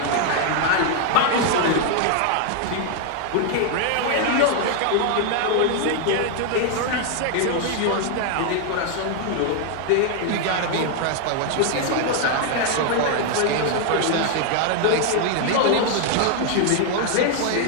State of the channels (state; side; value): different; both; correlation 0.00